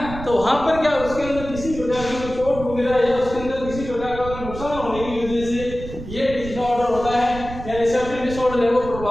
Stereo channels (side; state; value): right; noise; rumble, 11 dB below the sound